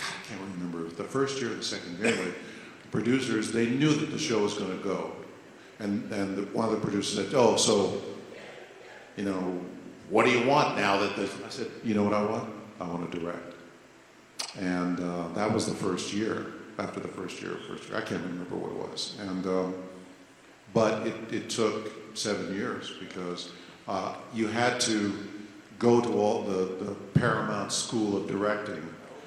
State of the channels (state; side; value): identical; both; correlation 1.00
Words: I can't remember, the first year or the second year, anyway, the producers, they knew that the show was going to go. And one of the producers said, oh, so, you know, what do you want now that this? I said, you know what I want? I want to direct. And that was the first year. After the first year, I can't remember what it was. And but it took 7 years because you had to go to all the Paramount School of Directing,